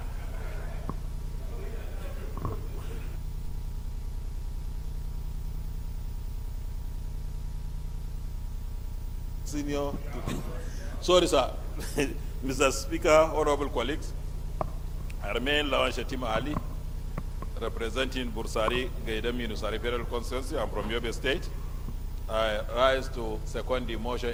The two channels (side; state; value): both; identical; correlation 1.00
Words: Senior, sorry, sir. Mr. Speaker, honorable colleagues, I remain Lawan Shetima Ali, representing Bursari, Gaidam Yunusari Federal Constituency. I'm from Yobe State. I rise to second the motion